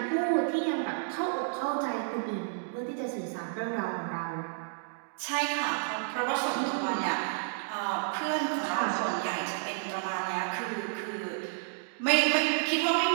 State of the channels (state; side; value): silent; left; digital silence